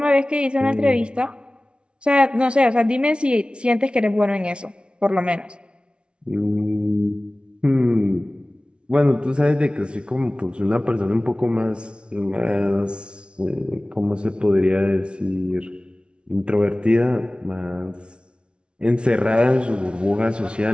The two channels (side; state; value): left; late; 0.058 ms